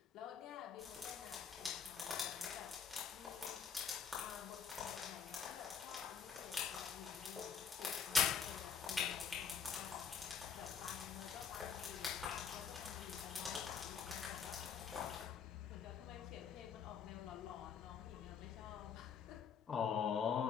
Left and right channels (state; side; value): quieter; right; 6.7 dB